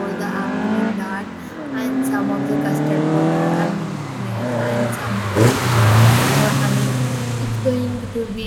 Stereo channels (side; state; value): both; identical; correlation 1.00